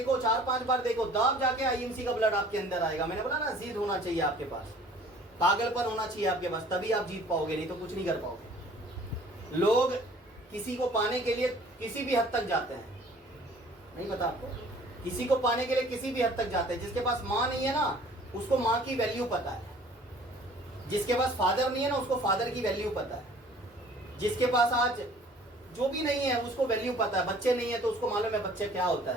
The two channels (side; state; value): both; normal; correlation 0.52